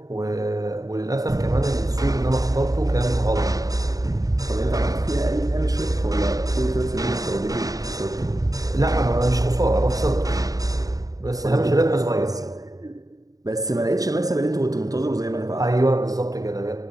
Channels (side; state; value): left; late; 0.17 ms